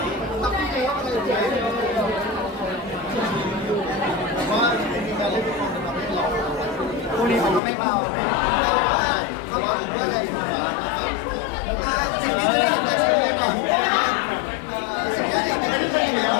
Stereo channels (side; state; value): right; drops out; at 7.6 s